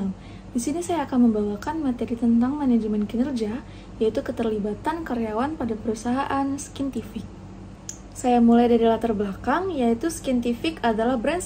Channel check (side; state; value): both; identical; correlation 1.00